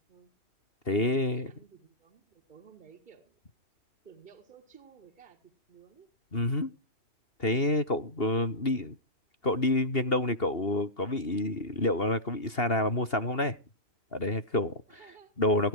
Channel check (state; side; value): late; right; 2.8 ms